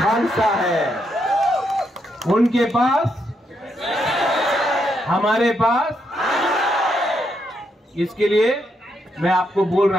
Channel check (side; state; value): both; normal; correlation 0.79